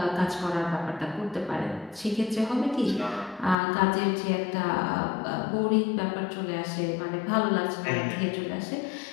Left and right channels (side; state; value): right; drops out; at 3.6 s